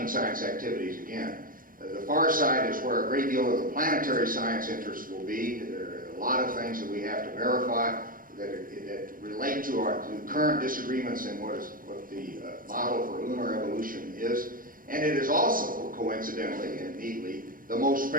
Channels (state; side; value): late; left; 0.40 ms